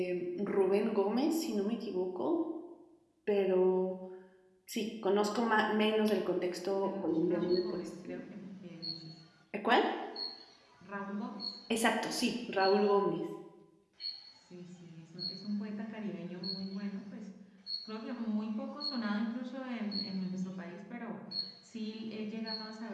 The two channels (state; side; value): identical; both; correlation 1.00